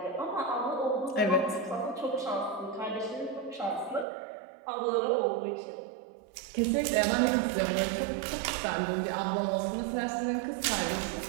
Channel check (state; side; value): drops out; left; at 4.0 s